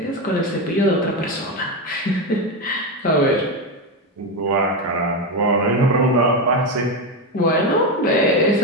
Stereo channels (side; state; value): both; normal; correlation 0.12